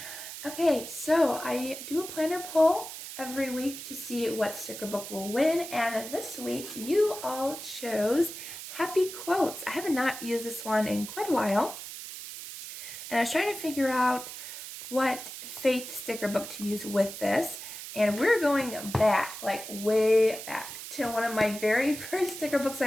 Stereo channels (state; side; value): noise; right; hiss, 10 dB below the sound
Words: Okay, so I do a planner poll every week to see what sticker book will win, and this week you all chose Happy Quotes. I have not used this one in quite a while, and I was trying to figure out what faith sticker book to use with this. And we're going back, like way back, to one of my very first sticker books